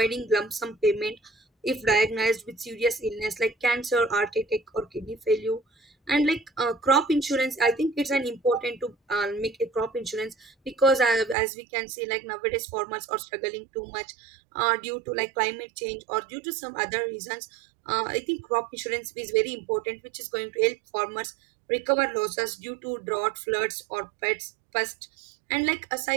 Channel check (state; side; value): drops out; left; at 11.4 s